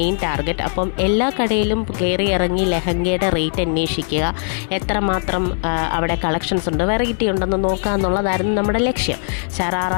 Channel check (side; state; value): right; silent; digital silence